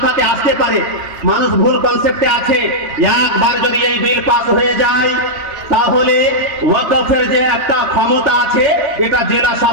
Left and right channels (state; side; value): late; left; 3.1 ms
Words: আসতে পারে, মানুষ ভুল কনসেপ্টে আছে, একবার যদি এই বিল পাস হয়ে যায় তাহলে ওয়াকফের যে একটা ক্ষমতা আছে এটা জেলা